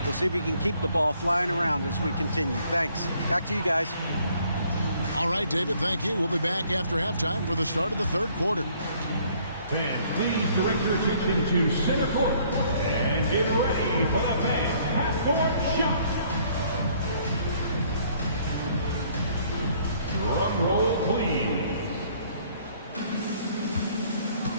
We'll see if we can keep the ball flying around as we continue. Thanks. Back to you guys. All right, David, thank you. We'll be back after halftime for the start of the 3rd quarter. Fans, please direct your attention to center court and get ready for the fan half-court shot. Drum roll, please.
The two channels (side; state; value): both; inverted; correlation -0.62